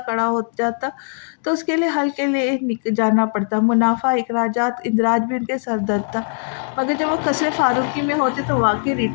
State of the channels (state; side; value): silent; right; digital silence